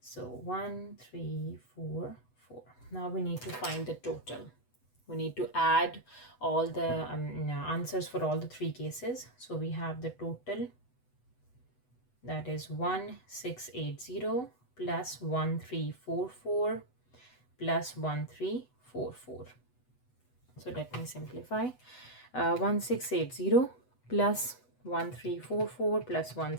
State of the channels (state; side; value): late; right; 8.0 ms